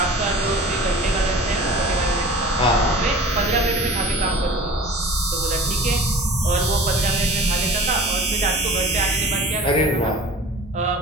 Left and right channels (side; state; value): both; normal; correlation 0.41